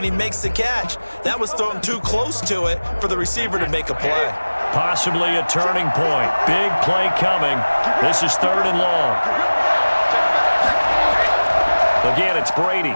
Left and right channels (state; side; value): inverted; both; correlation -1.00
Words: he makes the catch. That was thrown too close to it for the receiver to make a play. Possibly a turning point. Big play coming. This is 3rd and long. Again, it's Brady.